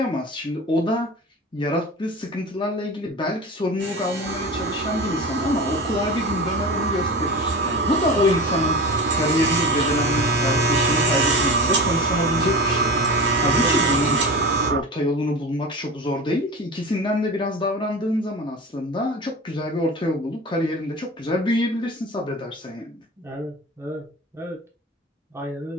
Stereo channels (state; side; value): normal; both; correlation 0.31